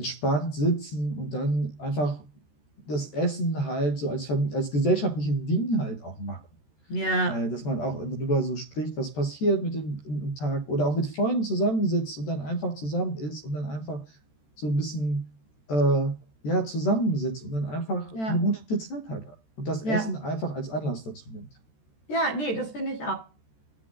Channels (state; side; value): late; right; 13 ms